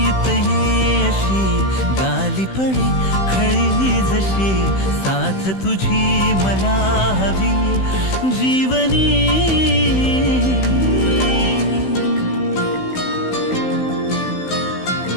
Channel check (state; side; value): late; right; 16 ms